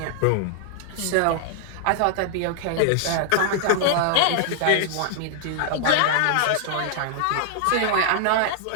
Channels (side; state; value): both; different; correlation -0.01